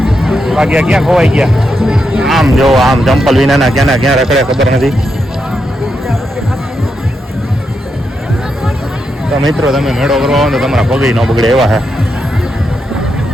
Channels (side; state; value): both; normal; correlation 0.84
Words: બાકી ક્યાં ખોવાઈ ગયા? આમ જો આમ ચંપલ વિનાના ક્યાં રખડે ખબર નથી. તો મિત્રો તમે મેળો કરવા આવો તો તમારા પગે ન બગડે એવા છે.